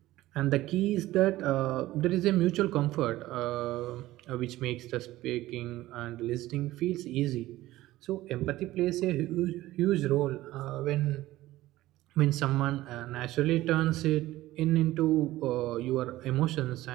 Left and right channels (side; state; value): left; quieter; 16.4 dB